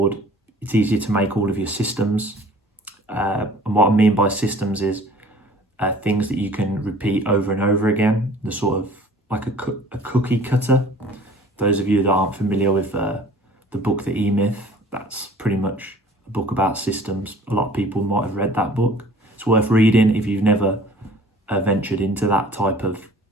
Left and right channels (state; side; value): normal; both; correlation 0.50